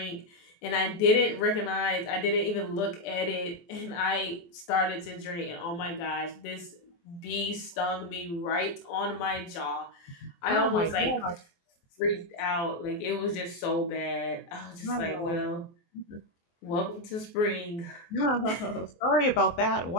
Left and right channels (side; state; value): right; late; 23 ms